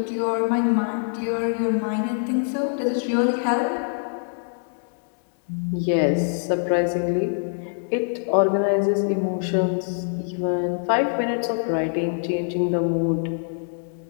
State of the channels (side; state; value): right; silent; digital silence